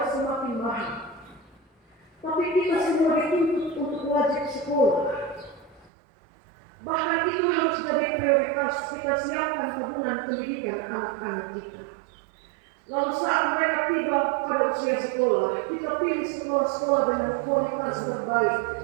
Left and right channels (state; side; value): drops out; left; at 5.9 s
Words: semakin mahal. Tapi kita semua dituntut untuk wajib sekolah. Bahkan itu harus jadi prioritas kita siapkan tabungan pendidikan anak-anak kita. Lalu saat mereka tiba pada usia sekolah, kita pilih sekolah-sekolah dengan kualitas terbaik